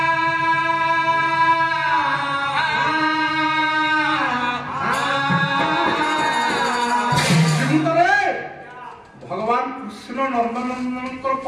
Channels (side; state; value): both; identical; correlation 1.00